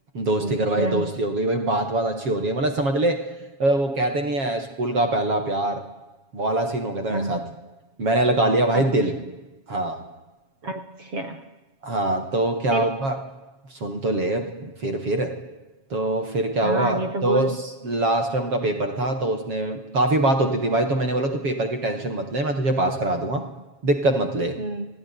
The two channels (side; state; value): left; late; 7.3 ms